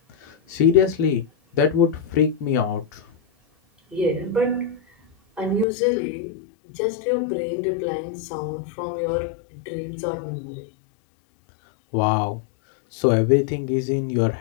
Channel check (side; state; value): right; drops out; at 5.7 s